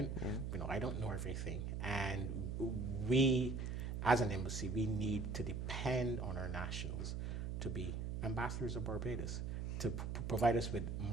I don't know everything, and we as an embassy, we need to depend on our nationals to be ambassadors of Barbados, to provide us with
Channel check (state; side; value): noise; right; hum, 2 dB below the sound